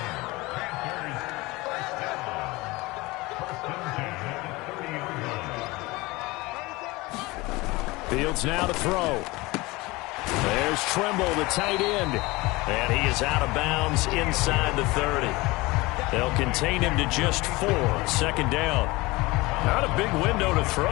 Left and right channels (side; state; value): right; quieter; 22.1 dB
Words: Fields now to throw. There's Trimble, the tight end. And he is out of bounds inside the 30. They'll contain him to just 4. 2nd down. Not a big window to